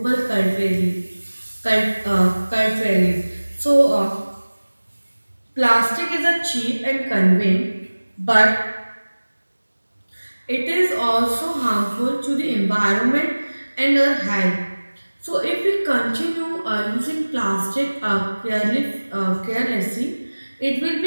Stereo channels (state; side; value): inverted; both; correlation -1.00